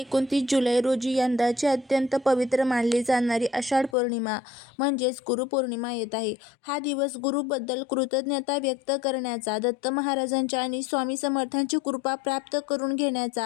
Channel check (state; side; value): drops out; right; at 4.0 s